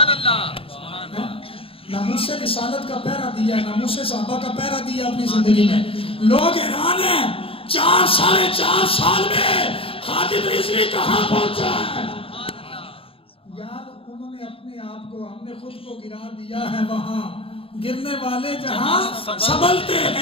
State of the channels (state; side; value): late; right; 0.27 ms